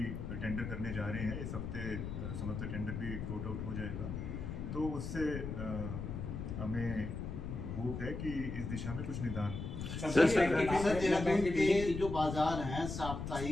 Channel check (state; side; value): noise; left; rumble, 5 dB below the sound